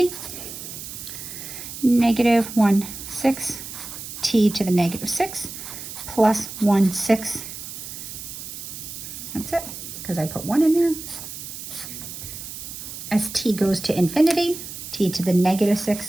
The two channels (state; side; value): noise; right; hiss, 10 dB below the sound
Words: negative 1/6 t to the negative 6 plus 1/6. That's it, because I put 1 in there. As t goes to infinity, t to the negative